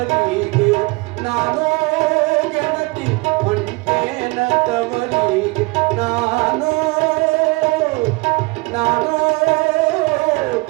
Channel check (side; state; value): left; quieter; 26.0 dB